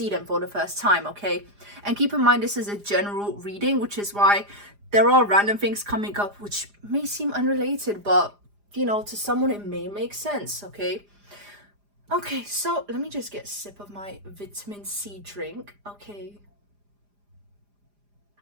them for the first time, okay? And keep in mind, this is a general reading, which is why there are random things coming up which may seem unrelated, but you know, to someone it may make sense, okay? Okay, so let me just get a sip of my vitamin C drink. Okay,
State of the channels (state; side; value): late; left; 4.9 ms